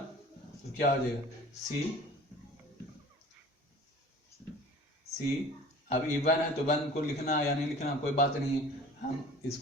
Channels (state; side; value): normal; both; correlation 0.44